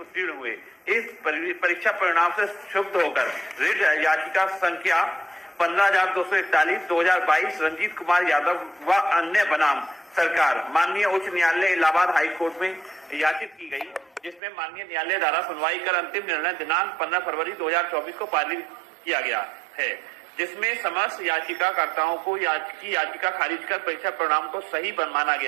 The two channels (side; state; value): left; drops out; at 14.4 s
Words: हुए। इस परीक्षा परिणाम से क्षुब्ध होकर रिट याचिका संख्या 15,241 2022 रंजीत कुमार यादव व अन्य बनाम सरकार माननीय उच्च न्यायालय इलाहाबाद हाई कोर्ट में याचित की गई, जिसमें माननीय न्यायालय द्वारा सुनवाई कर अंतिम निर्णय दिनांक 15 फरवरी 2024 को पारित किया गया है, जिसमें समस्त याचिकाकर्ताओं को याचिका खारिज कर परीक्षा परिणाम को सही माना